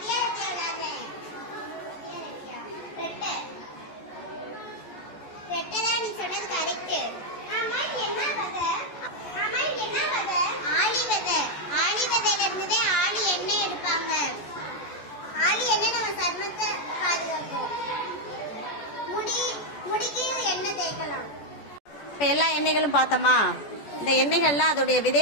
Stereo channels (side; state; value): right; late; 14 ms